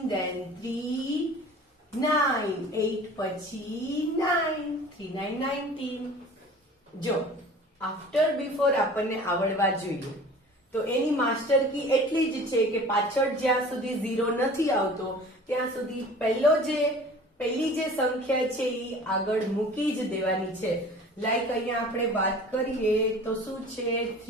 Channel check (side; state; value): both; normal; correlation 0.43